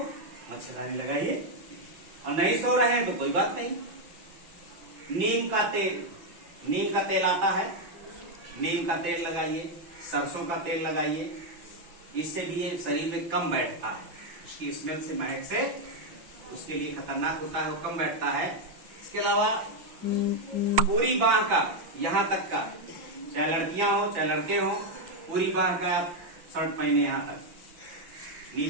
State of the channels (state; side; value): late; left; 5.9 ms